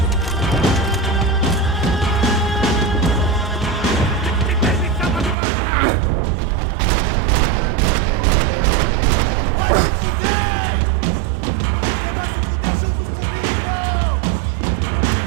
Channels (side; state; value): left; drops out; at 5.4 s